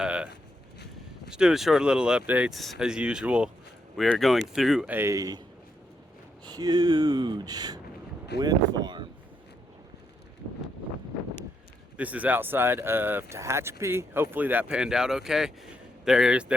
Just doing short little updates as usual. We are going through a huge wind farm. This is outside of Tehachapi. Hopefully that panned out okay.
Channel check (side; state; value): both; normal; correlation 0.79